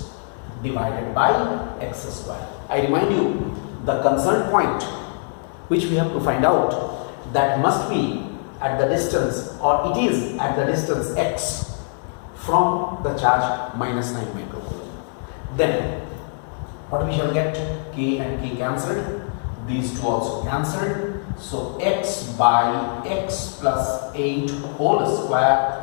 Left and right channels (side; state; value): right; silent; 61 dB below the other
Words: divided by x square. I remind you, the concerned point which we have to find out, that must be at the distance, or it is at the distance x from the charge minus 9 microcoulomb. Then what we shall get? K and K cancelled, these two also cancelled. So x by x plus 8 whole square